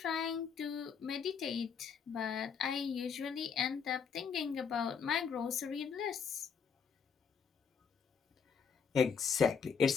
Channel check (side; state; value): right; quieter; 6.4 dB